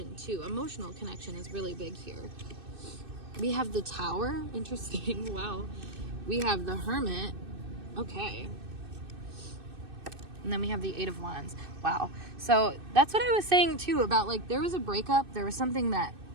too. Emotional connection is really big here. We have the Tower. Interesting. Wow. We have the Hermit. Okay. And then we have the Eight of Wands. Wow. So that's what I was saying too about like there was a breakup. There was something that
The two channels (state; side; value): late; left; 2.6 ms